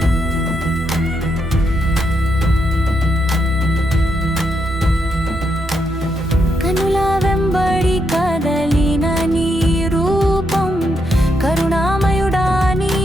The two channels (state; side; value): normal; both; correlation 0.80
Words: కనుల వెంబడి కదలిన నీ రూపం కరుణామయుడా